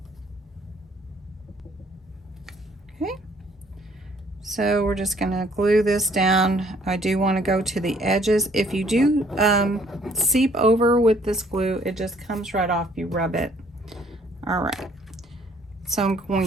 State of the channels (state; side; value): normal; both; correlation 0.62